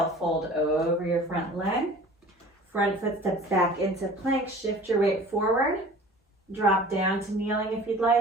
fold over your front leg. Front foot steps back into plank. Shift your weight forward. Drop down to kneeling if you'd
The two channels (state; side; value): normal; both; correlation 0.44